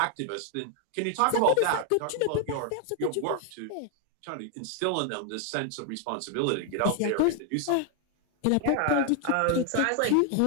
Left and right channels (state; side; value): different; both; correlation 0.00